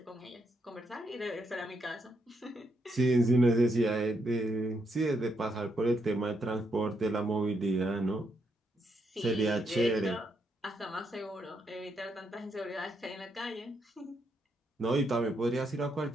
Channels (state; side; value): normal; both; correlation 0.78